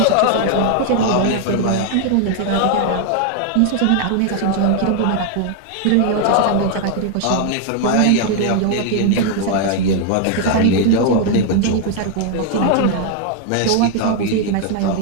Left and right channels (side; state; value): both; different; correlation 0.00